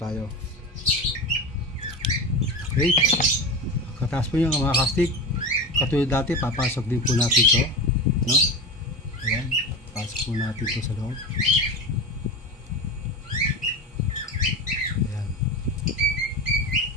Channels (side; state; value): both; normal; correlation 0.25